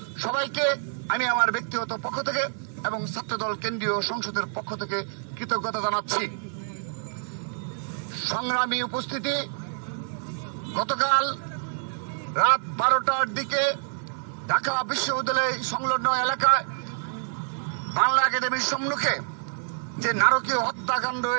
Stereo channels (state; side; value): silent; left; digital silence